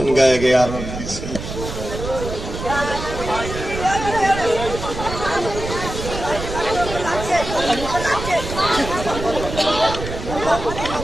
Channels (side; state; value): right; noise; rumble, 7 dB below the sound